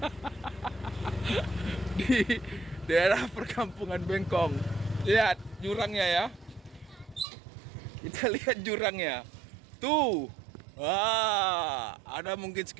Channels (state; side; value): drops out; left; at 7.2 s